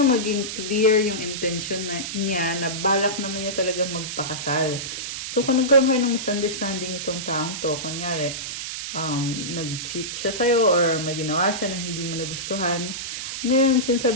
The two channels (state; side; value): noise; right; hiss, 6 dB below the sound